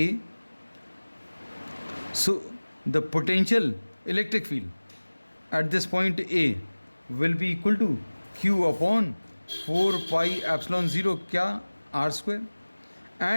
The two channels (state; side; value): inverted; both; correlation -1.00